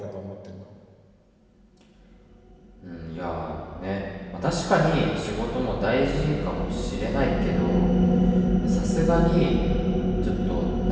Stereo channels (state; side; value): identical; both; correlation 1.00